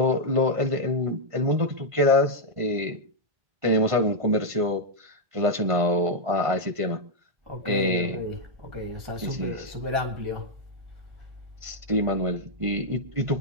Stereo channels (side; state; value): left; late; 1.5 ms